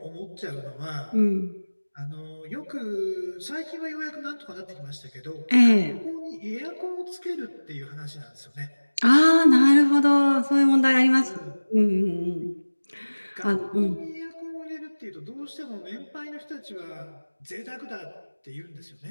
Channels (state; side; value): inverted; both; correlation -1.00